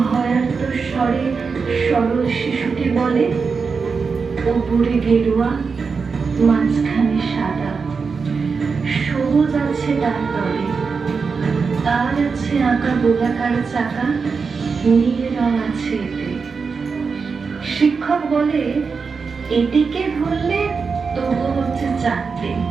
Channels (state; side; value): quieter; left; 5.1 dB